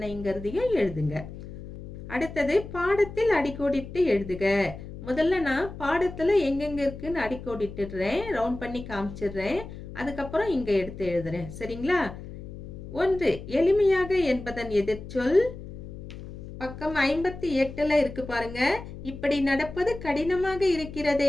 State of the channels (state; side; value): noise; left; hum, 12 dB below the sound